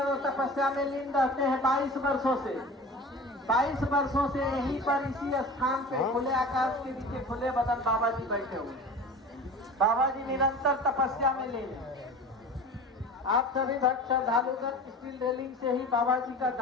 तपस्या में लीन रहते हैं 22 वर्षों से। 22 वर्षों से यहीं पर इसी स्थान पे खुले आकाश के नीचे खुले बदन बाबा जी बैठे हुए। बाबा जी निरंतर तपस्या में लीन हैं। आप सभी भक्त श्रद्धालुगण स्टील रेलिंग से ही बाबा जी का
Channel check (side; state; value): both; normal; correlation 0.37